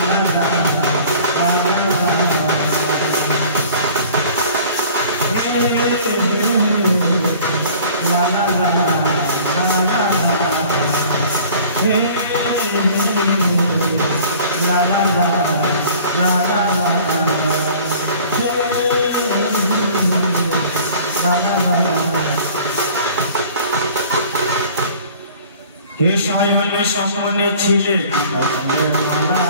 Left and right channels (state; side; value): inverted; both; correlation -0.48